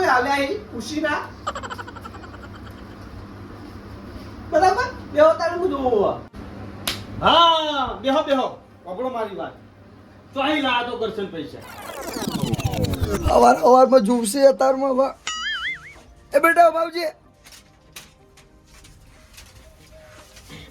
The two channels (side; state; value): both; identical; correlation 1.00